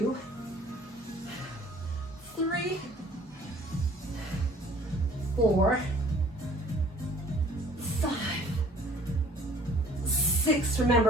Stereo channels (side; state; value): both; normal; correlation 0.53